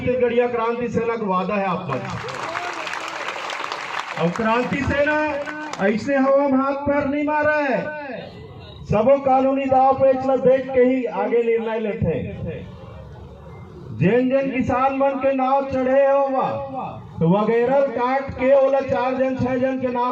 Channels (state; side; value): identical; both; correlation 1.00